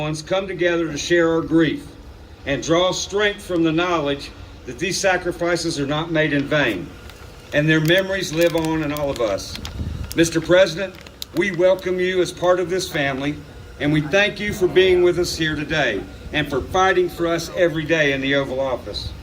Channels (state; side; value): identical; both; correlation 1.00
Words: come together to share our grief and draw strength from the knowledge that these sacrifices are not made in vain, and their memories live on in all of us. Mr. President, we welcome you as part of this family, and we thank you for being with us here today and for fighting for us every day in the Oval Office.